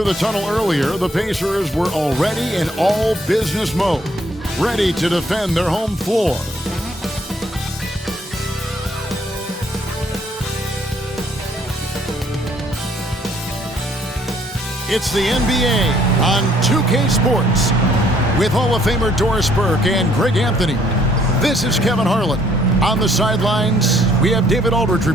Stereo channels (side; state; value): both; normal; correlation 0.64